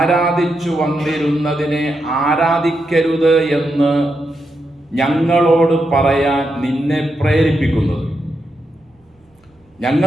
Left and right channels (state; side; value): normal; both; correlation 0.84